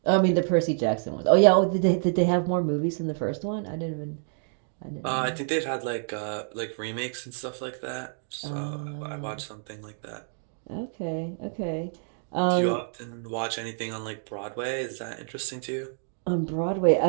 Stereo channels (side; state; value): left; silent; digital silence